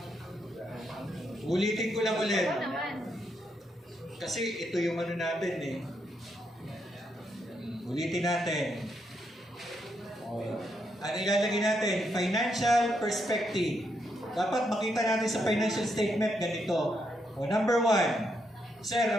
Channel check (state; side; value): normal; both; correlation 0.79